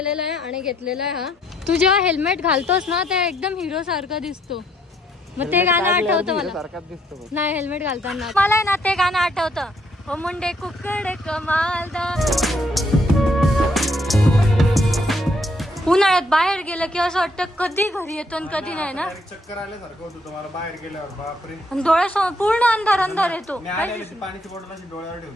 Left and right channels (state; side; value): normal; both; correlation 0.70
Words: आहे आणि घेतलेला आहे. हा तू जेव्हा हेल्मेट घालतोस ना ते एकदम हिरो सारखं दिसतो. मग ते गाणं आठवतं मला. नाही हेल्मेट घालताना मला आहे ना ते गाणं आठवतं. हो मुंडे कुकडे कमालदार. उन्हाळ्यात बाहेर गेलं की असं वाटतं कधी घरी येतो आणि कधी नाही ना. चक्कर आल्यासारखं होतं तुम्हाला बाहेर गेल्यावर. बापरे डोळ्यासमोर पूर्ण अंधार अंधार येतो. पाण्याची बॉटल अशी डोळ्यावर